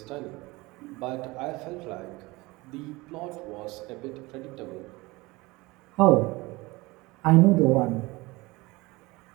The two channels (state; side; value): quieter; left; 22.5 dB